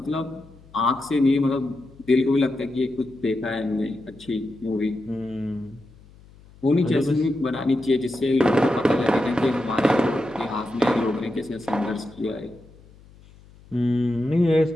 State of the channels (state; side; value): noise; left; hum, 24 dB below the sound